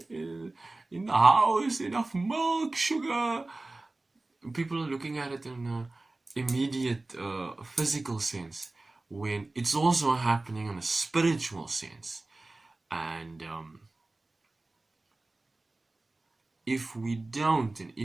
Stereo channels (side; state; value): left; quieter; 3.0 dB